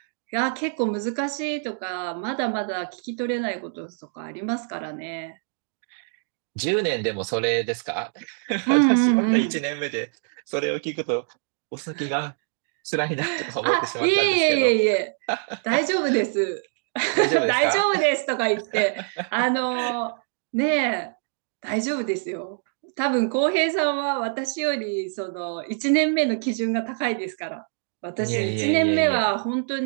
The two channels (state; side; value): silent; left; 61 dB below the other